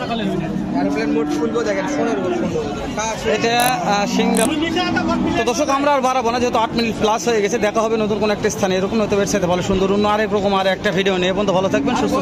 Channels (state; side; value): identical; both; correlation 1.00